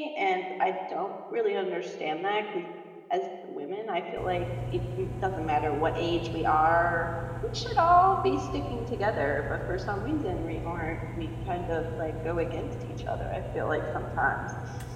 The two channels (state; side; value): identical; both; correlation 1.00